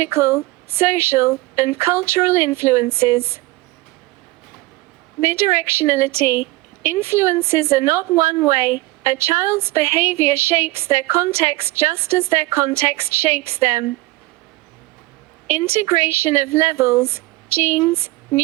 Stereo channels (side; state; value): left; quieter; 20.2 dB